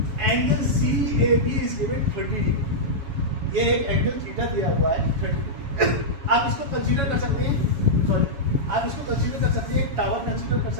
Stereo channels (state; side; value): late; left; 7.2 ms